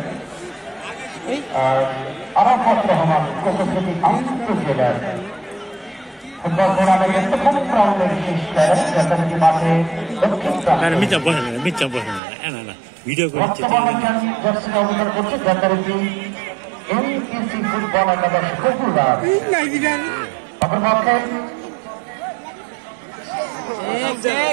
আরাফাত রহমান কোকোসেটি আন্তর্জেলার ফুটবল টুর্নামেন্টের প্রথম রাউন্ডে বিশেষ যথারীতি মাঠে দক্ষিণ জার্সি অবদান করছে যথারীতি এমপিসি ফুটবল একাদশ কপুরবাগ অপরপক্ষে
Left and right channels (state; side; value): drops out; left; at 12.2 s